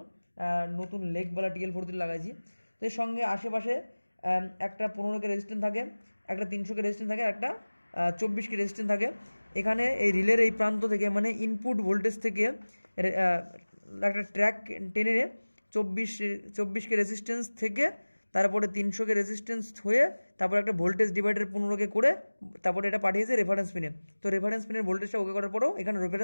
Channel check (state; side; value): inverted; both; correlation -1.00